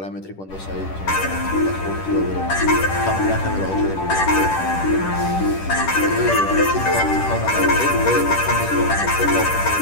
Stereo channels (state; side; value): late; right; 10 ms